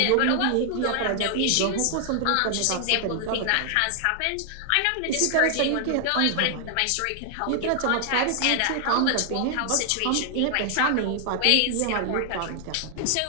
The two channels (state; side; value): different; both; correlation 0.00